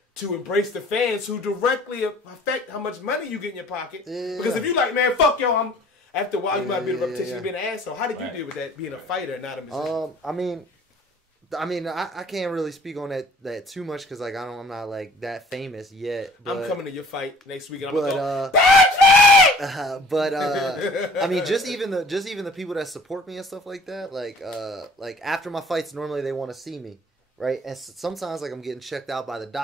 to embrace the fans who directly affect how much money you get in your pocket? Because if you like, man, fuck y'all, after a while, you might be the reputation of being an asshole. How did you deal with that, being a fighter and not a musician? I mean, I can't really speak on that too much because like I'm not like that famous yet. But, I'm coming to your fight next week, and I'm gonna go. I mean, just even the people that support me and stuff like that, like after my fights, normally they want to see me, right? And sometimes like I'm getting checked out by the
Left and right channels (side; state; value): both; normal; correlation 0.51